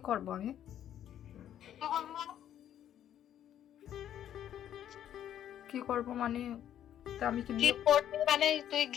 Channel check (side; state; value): right; quieter; 10.7 dB